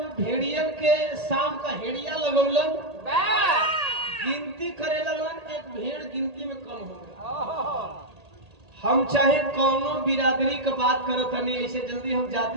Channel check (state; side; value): late; left; 1.8 ms